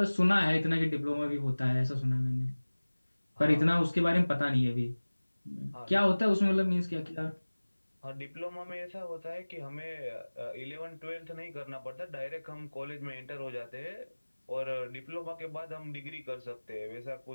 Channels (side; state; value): both; inverted; correlation -1.00